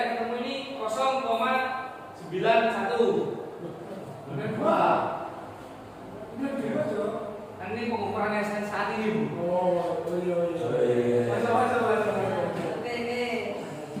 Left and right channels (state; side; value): identical; both; correlation 1.00